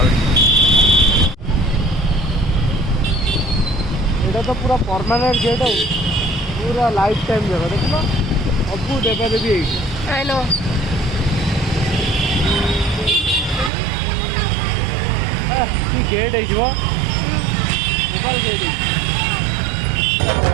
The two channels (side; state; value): left; drops out; at 13.7 s